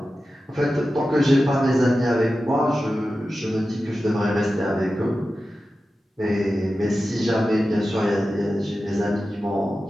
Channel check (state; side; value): normal; both; correlation 0.93